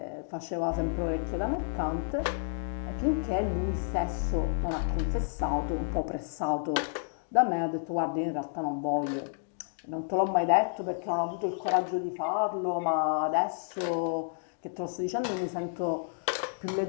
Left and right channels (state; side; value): silent; right; digital silence